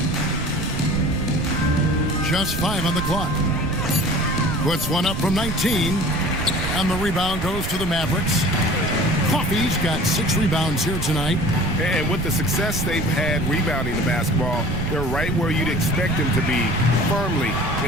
Just 5 on the clock. Puts one up from 19. And the rebound goes to the Mavericks. Coffee's got 6 rebounds here tonight. And with the success they've had rebounding the basketball, they're right where you'd expect them to be, firmly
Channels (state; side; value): noise; right; rumble, 5 dB below the sound